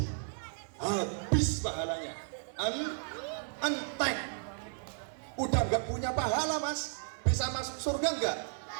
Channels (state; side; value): silent; left; 55 dB below the other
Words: Habis pahalanya. Entek. Udah nggak punya pahala, Mas. Bisa masuk surga nggak?